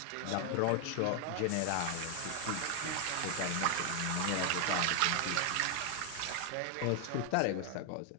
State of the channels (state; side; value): different; both; correlation 0.00